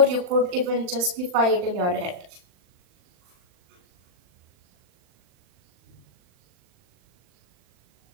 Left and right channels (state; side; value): late; left; 40 ms